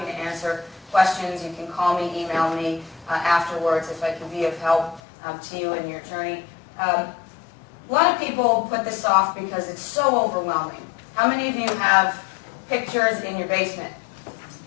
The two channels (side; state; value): right; drops out; at 5.0 s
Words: to answer questions. You can call me, email me afterwards if I can be of help to you in your journey. A lot of people put this off because it's so overwhelming. How many of you have pictures in your basement?